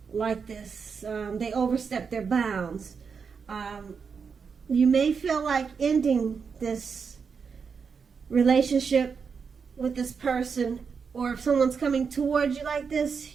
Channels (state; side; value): quieter; left; 5.8 dB